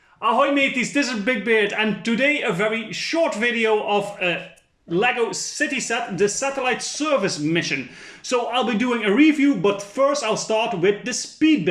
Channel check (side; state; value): both; identical; correlation 1.00